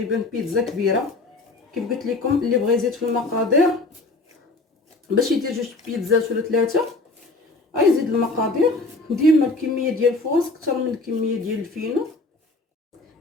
بيتزا كبيره. كيف قلت لكم اللي بغى يزيد في المقادير باش يدير جوج بيتزات ولا ثلاثه غيزيد المقادير. ديما الكميه ديال الفورس اكثر من الكميه ديال الفينو.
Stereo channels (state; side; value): quieter; right; 3.3 dB